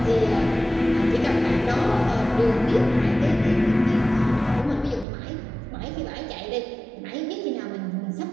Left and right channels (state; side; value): drops out; left; at 5.1 s